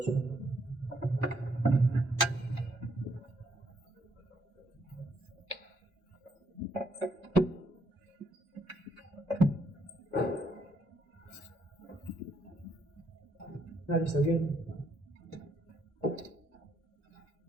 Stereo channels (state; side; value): normal; both; correlation 0.72